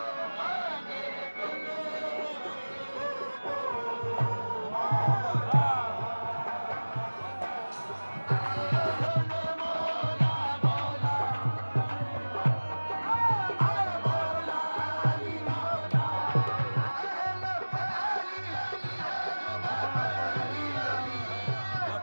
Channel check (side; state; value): both; inverted; correlation -1.00